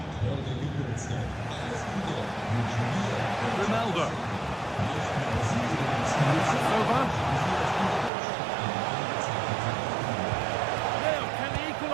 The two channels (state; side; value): drops out; left; at 8.1 s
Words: Ronaldo. Over. Now, can he